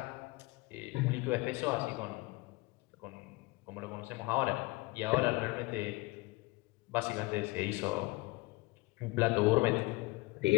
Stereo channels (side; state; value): right; quieter; 23.2 dB